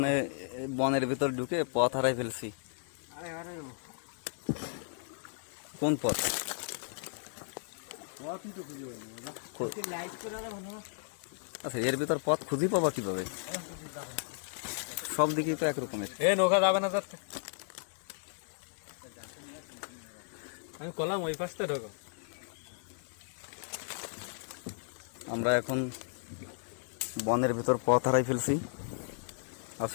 বনের ভিতর ঢুকে পথ হারাই ফেলছি। কোন পথ? পথই তো খুঁজে পাই না দাদা। লাইট করে আর হলো। আচ্ছা, এর ভিতর পথ খুঁজে পাবা কিভাবে? সব দিকেই তো একরকমের। এ নৌকা যাবে না যাচ্ছে। আমি কলাম ওই পাশটা ঢোকো। আমরা এখন বনের ভিতর পথ হারাই ফেলছি।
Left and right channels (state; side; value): silent; right; digital silence